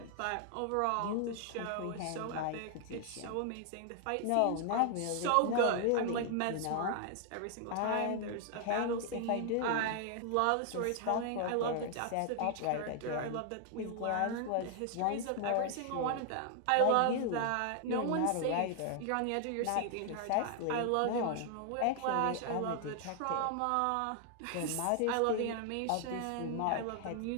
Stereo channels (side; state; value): both; different; correlation 0.00